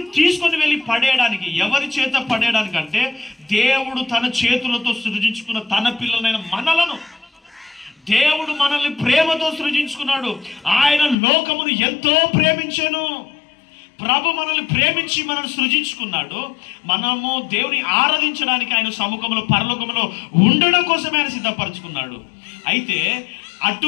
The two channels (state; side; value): drops out; right; at 11.2 s